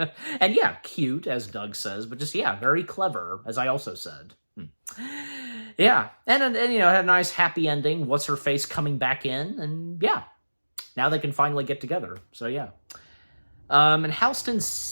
yeah, cute, as Doug says, but just, yeah, very clever, as I also said. Yeah, and you know, had a nice happy ending. What's-her-face coming back in, and yeah, now they can finally get together. So yeah. And Halston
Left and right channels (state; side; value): inverted; both; correlation -1.00